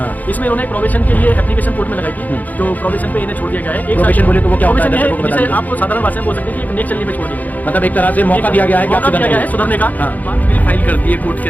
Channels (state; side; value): late; right; 0.080 ms